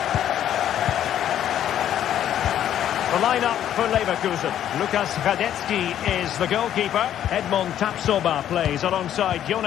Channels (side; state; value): right; quieter; 10.8 dB